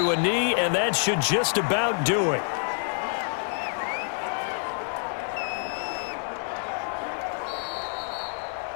a knee, and that should just about do it.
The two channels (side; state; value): right; silent; 60 dB below the other